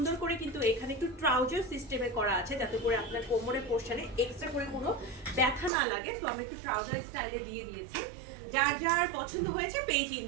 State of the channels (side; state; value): left; drops out; at 5.7 s